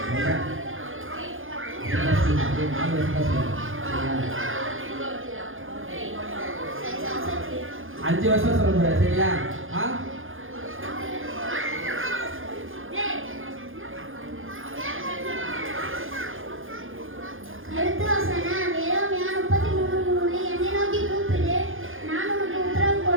அஞ்சு வருஷம் சொல்ல போற சரியா? அடுத்த வசனம் எரேமியா 33:3 என்னை நோக்கி கூப்பிடு நான் உனக்கு உத்தரவு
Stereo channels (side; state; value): left; late; 0.59 ms